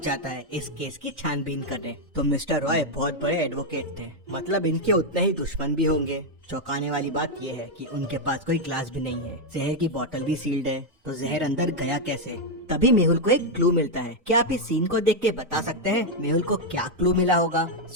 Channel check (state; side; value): late; left; 1.4 ms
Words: जाता है इस केस की छानबीन करने। तो मिस्टर रॉय बहुत बड़े एडवोकेट थे, मतलब इनके उतने ही दुश्मन भी होंगे। चौंकाने वाली बात यह है कि उनके पास कोई ग्लास भी नहीं है, जहर की बोतल भी सील्ड है। तो जहर अंदर गया कैसे? तभी मेहुल को एक क्लू मिलता है। क्या आप इस सीन को देख के बता सकते हैं मेहुल को क्या क्लू मिला होगा?